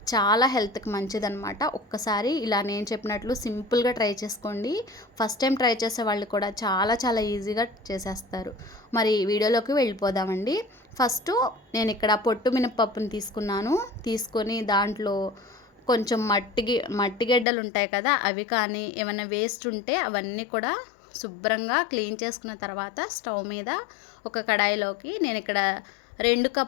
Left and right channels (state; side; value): drops out; right; at 17.4 s